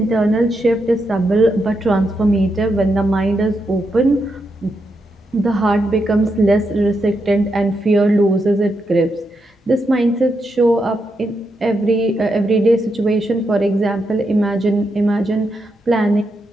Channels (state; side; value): normal; both; correlation 0.83